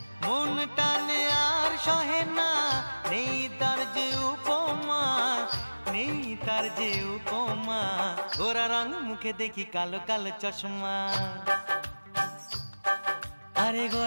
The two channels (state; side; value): inverted; both; correlation -1.00